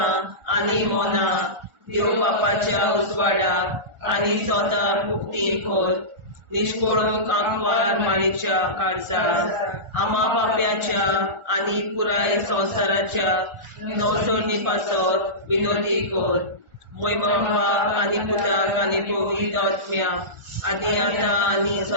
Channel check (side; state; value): left; late; 1.4 ms